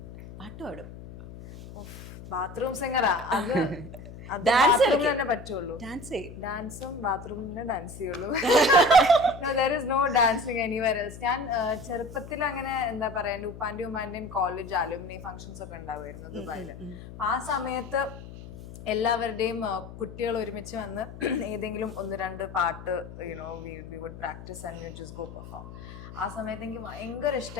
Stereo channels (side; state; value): left; noise; hum, 14 dB below the sound